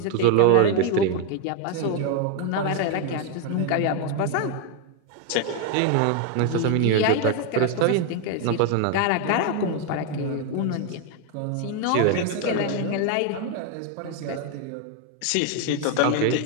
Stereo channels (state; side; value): different; both; correlation 0.01